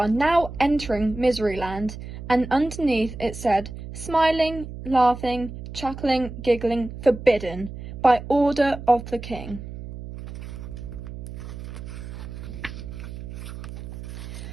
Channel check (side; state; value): right; noise; hum, 11 dB below the sound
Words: now entering Miseryland," and underneath it said, "Smiling, laughing, chuckling, giggling, forbidden, by order of the king."